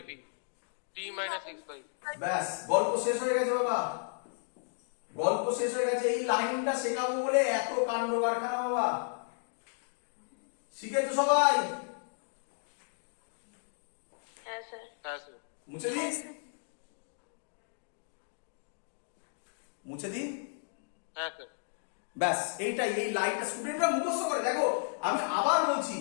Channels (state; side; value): silent; right; digital silence